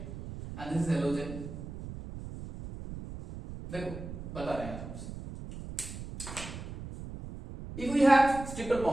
and this is halogen. देखो बता रहे हैं हमसे, if we have triple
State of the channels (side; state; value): right; noise; rumble, 10 dB below the sound